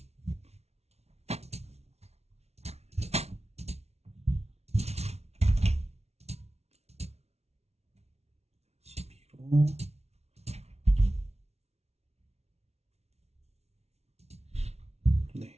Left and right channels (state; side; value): late; left; 0.31 ms